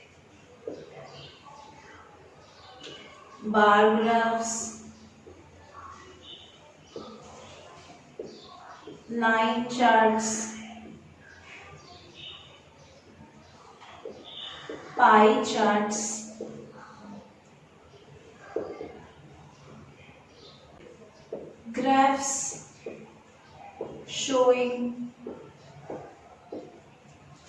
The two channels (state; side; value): identical; both; correlation 1.00